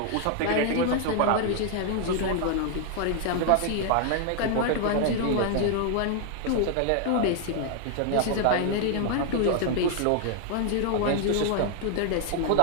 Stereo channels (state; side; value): different; both; correlation 0.00